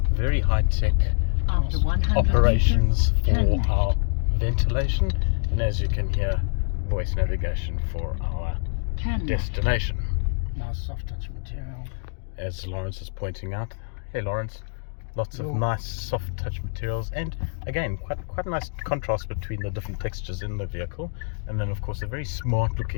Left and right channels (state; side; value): silent; right; digital silence